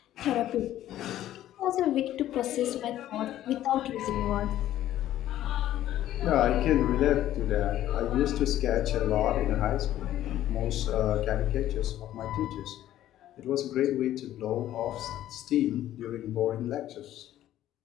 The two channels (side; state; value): right; quieter; 12.9 dB